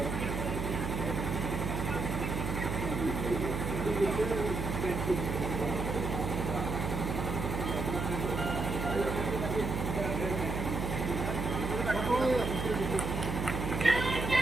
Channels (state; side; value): noise; right; hum, 2 dB below the sound